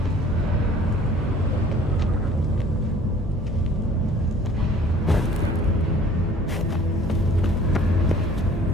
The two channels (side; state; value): both; normal; correlation 0.51